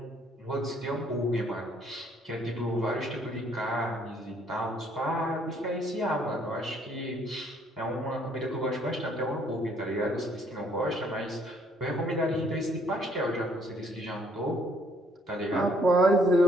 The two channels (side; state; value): both; normal; correlation 0.65